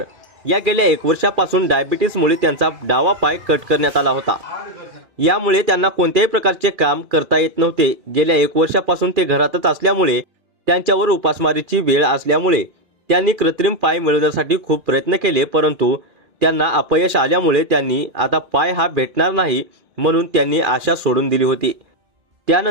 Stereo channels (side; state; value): left; late; 2.4 ms